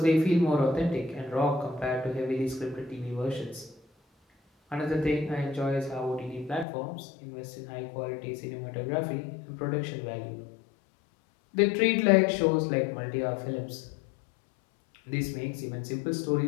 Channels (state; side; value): drops out; right; at 6.7 s